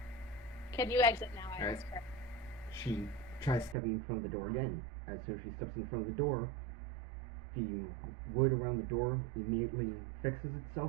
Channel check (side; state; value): left; drops out; at 3.8 s